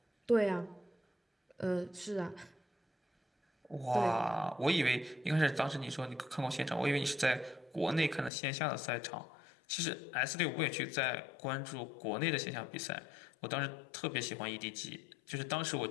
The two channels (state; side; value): drops out; right; at 8.3 s